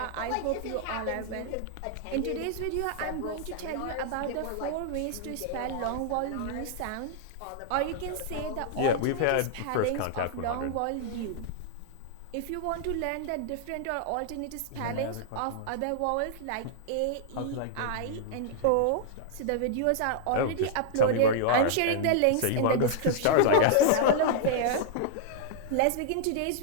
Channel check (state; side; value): different; both; correlation -0.01